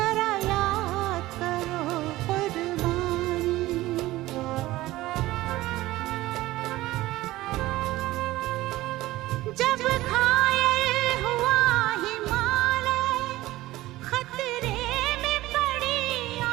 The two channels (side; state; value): left; quieter; 17.3 dB